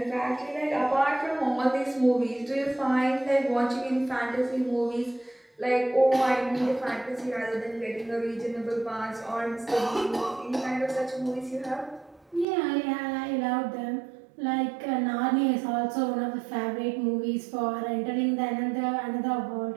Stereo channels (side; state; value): left; drops out; at 12.5 s